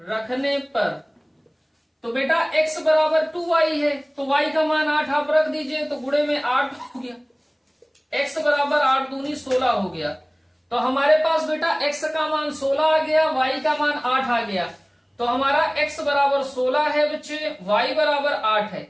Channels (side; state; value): both; identical; correlation 1.00